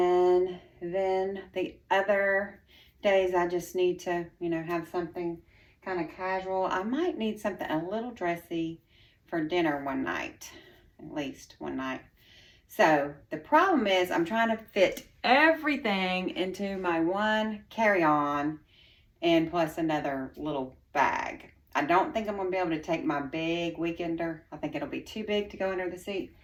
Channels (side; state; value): both; identical; correlation 1.00